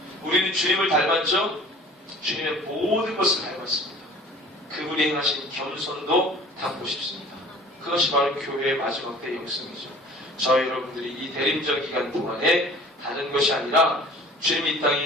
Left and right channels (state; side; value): normal; both; correlation 0.47